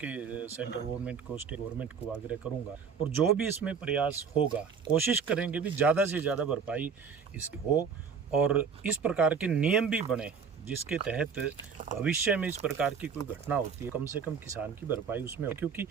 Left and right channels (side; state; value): left; quieter; 6.1 dB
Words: सेंट्रल गवर्नमेंट को, स्टेट गवर्नमेंट को आग्रह करूंगा, और जो भी इसमें प्रयास होगा कोशिश करेंगे भी ज़्यादा से ज़्यादा भरपाई इसकी हो, और इस प्रकार के नियम भी बने जिसके तहत भविष्य में इस प्रकार की कोई घटना होती है, कम से कम किसान की भरपाई उसमें हो। क्योंकि